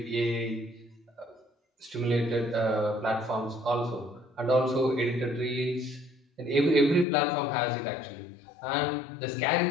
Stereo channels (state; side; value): drops out; right; at 7.1 s